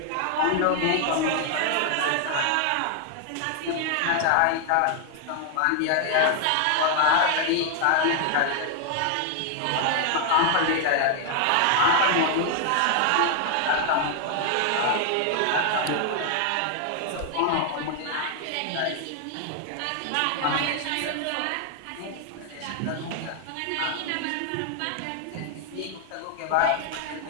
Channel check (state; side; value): different; both; correlation 0.00